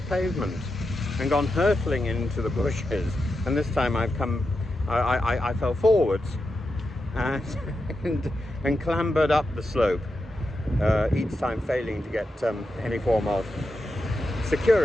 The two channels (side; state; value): both; normal; correlation 0.88